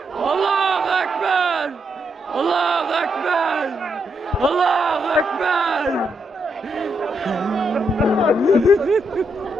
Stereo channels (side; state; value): both; normal; correlation 0.80